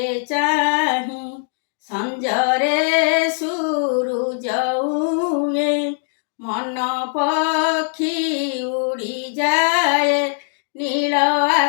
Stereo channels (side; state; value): right; silent; 59 dB below the other